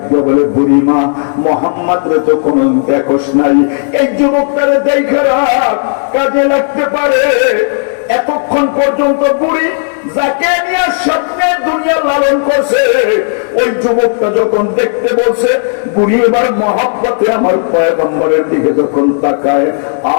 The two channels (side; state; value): right; silent; digital silence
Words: দিয়ে বলে, বুড়িমা মুহাম্মদ রে তো কোন দেখোস নাই, এই যুবকটারে দেখে রাখ, কাজে লাগতে পারে। এতক্ষণ পর্যন্ত বুড়ি যাকে নিয়ে স্বপ্নে দুনিয়া লালন করছে, ওই যুবকটা যখন দেখতে বলছে, বুড়ি এবার মহব্বতে আমার পয়গম্বরের দিকে যখন তাকায়,